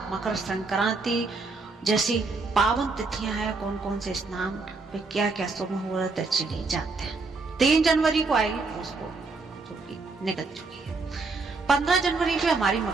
मकर संक्रांति जैसी पावन तिथियां हैं, कौन कौन से स्नान पे क्या क्या शुभ मुहूर्त है, चलिए जानते हैं। 3 जनवरी को आएगी पौष पूर्णिमा जो कि निकल चुकी है। 15 जनवरी पे हमारी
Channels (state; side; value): quieter; left; 3.9 dB